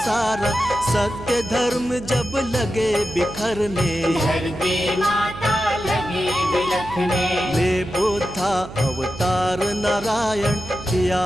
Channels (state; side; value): noise; right; hum, 14 dB below the sound